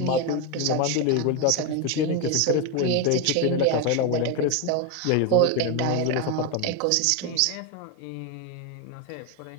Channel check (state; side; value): different; both; correlation 0.02